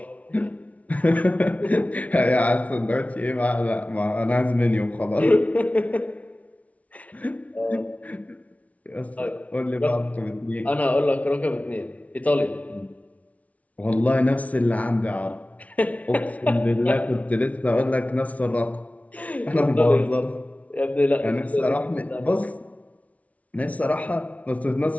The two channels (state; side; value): late; right; 0.068 ms